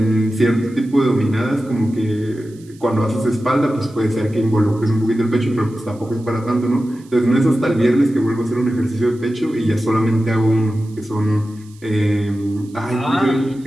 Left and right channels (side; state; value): right; noise; hiss, 28 dB below the sound